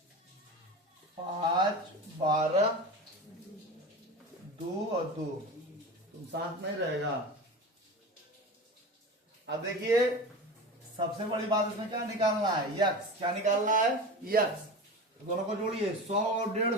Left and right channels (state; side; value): normal; both; correlation 0.30